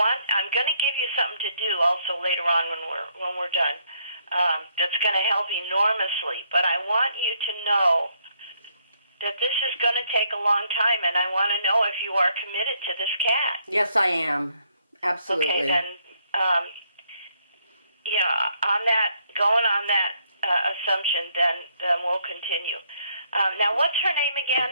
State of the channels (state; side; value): inverted; both; correlation -0.71